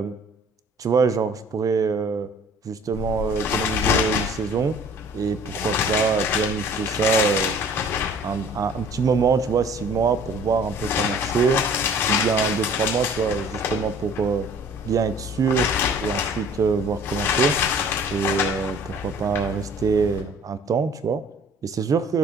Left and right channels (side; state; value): both; normal; correlation 0.51